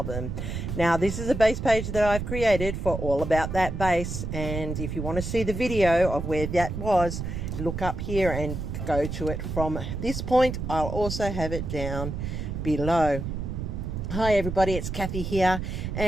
Now, this is a base page that I've created for All About That Base, and if you want to see the video of where that was, look up here and go to it from this point. I'll also have it down below. Hi everybody, it's Kathy here,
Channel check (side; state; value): right; noise; rumble, 5 dB below the sound